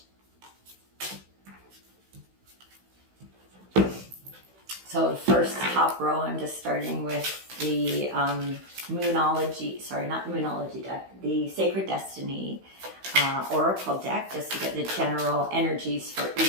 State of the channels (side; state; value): left; late; 16 ms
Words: So the first top row, I'm just starting with the Monology, sorry, not Monology deck, the Sacred Destiny Oracle deck, just to get the general energies for